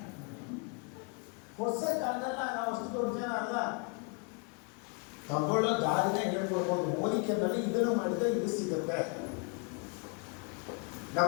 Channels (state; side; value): quieter; right; 33.6 dB